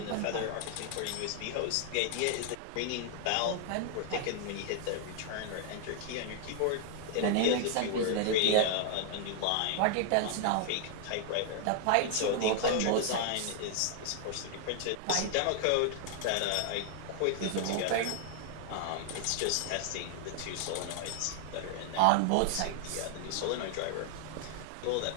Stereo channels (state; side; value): different; both; correlation 0.00